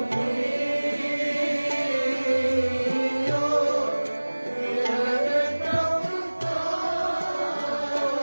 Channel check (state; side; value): inverted; both; correlation -1.00